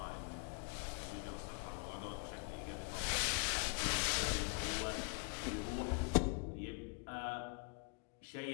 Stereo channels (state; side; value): quieter; right; 38.0 dB